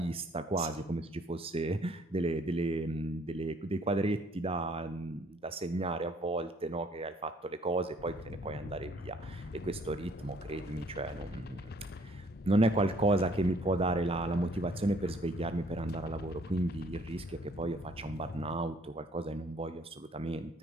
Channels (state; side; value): normal; both; correlation 0.61